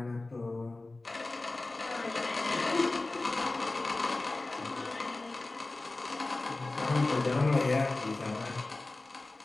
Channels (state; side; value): quieter; right; 3.1 dB